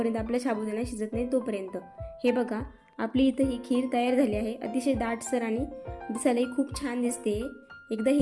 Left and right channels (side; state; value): both; identical; correlation 1.00